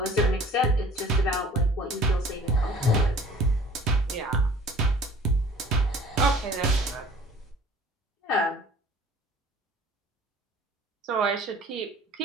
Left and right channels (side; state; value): both; normal; correlation 0.49